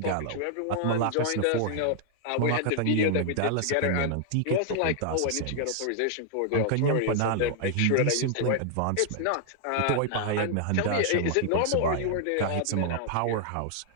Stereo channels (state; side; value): different; both; correlation 0.00